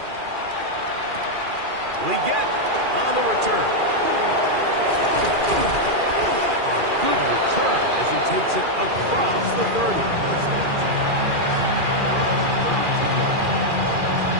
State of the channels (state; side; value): late; left; 2.4 ms